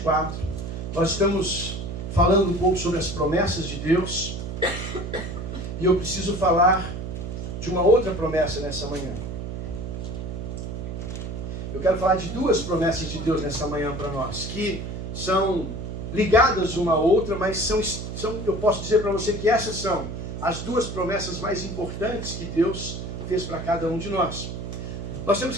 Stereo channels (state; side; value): noise; right; hum, 6 dB below the sound